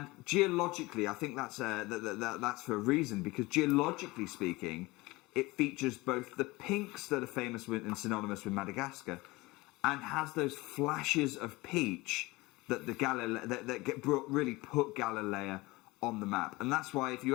geologically, I think that's for a reason, because geologically speaking, it features both the pinks that are famous with and synonymous with Madagascar, and has those flashes of peach that really put Galilea on the map. And that's why, if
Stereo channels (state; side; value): quieter; right; 21.8 dB